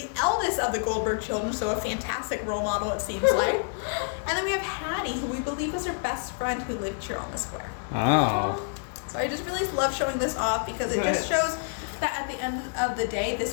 eldest of the Goldberg children, so a fantastic role model it seems like. And then we have Hattie, who we believe was her best friend who lived here on the square. Wow. So I just really love showing this off because it just shows that at the end of the day,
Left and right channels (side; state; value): right; silent; 60 dB below the other